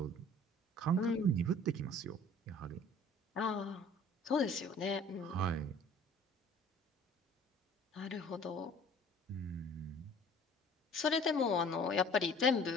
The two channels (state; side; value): normal; both; correlation 0.50